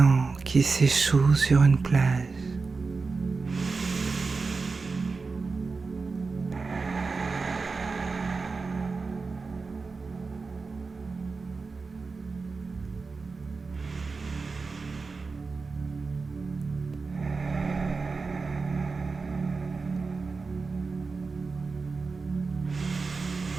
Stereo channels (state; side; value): quieter; left; 4.3 dB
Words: qui s'échoue sur une plage.